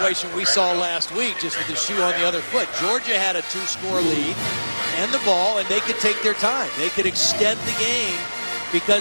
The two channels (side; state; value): both; inverted; correlation -1.00